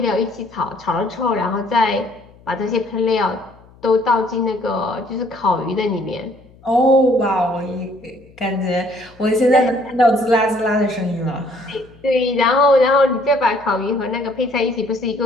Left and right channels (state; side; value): noise; left; hum, 26 dB below the sound